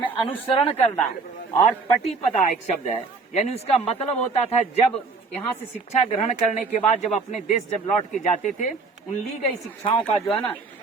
अनुसरण करना। और पटिपदा एक शब्द है, यानी उसका मतलब होता था जब यहाँ से शिक्षा ग्रहण करने के बाद जब अपने देश जब लौट के जाते थे, उन ली गई शिक्षाओं का जो है ना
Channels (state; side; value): quieter; left; 4.3 dB